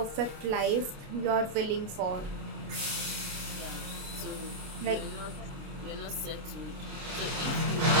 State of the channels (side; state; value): left; late; 29 ms